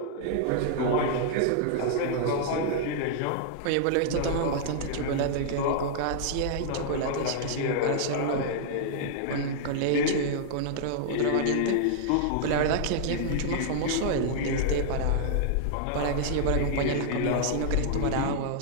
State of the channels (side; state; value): both; different; correlation -0.01